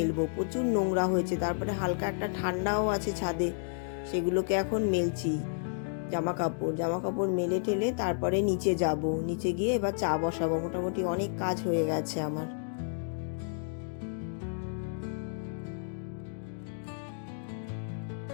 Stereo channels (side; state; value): right; silent; digital silence